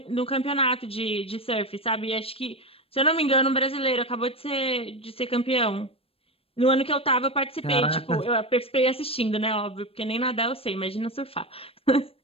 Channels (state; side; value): late; right; 0.28 ms